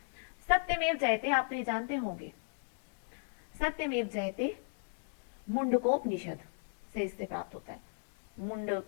सत्यमेव जयते आपने जानते होंगे, सत्यमेव जयते मुंडकोपनिषद से इससे प्राप्त होता है,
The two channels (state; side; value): silent; right; digital silence